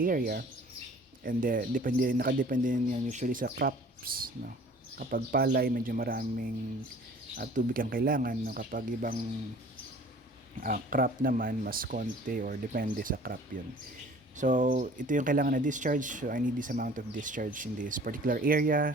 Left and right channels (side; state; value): both; normal; correlation 0.49